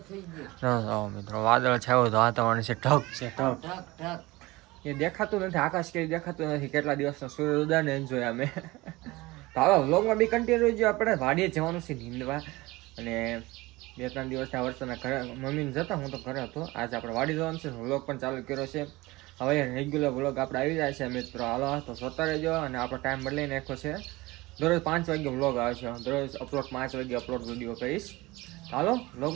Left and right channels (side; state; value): left; quieter; 20.9 dB